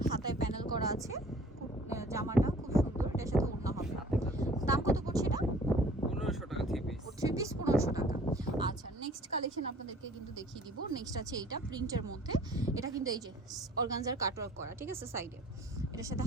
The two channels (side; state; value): both; normal; correlation 0.51